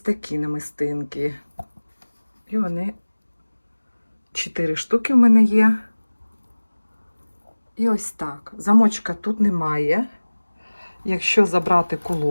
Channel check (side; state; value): both; inverted; correlation -1.00